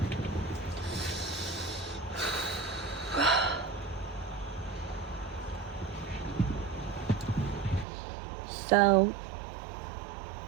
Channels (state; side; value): drops out; left; at 7.9 s